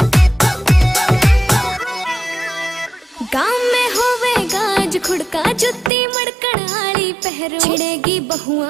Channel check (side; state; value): left; drops out; at 5.9 s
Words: गाँव में होवेगा आज खुड़का, जुत्ती मड़कण आली पहरू। छिड़ेगी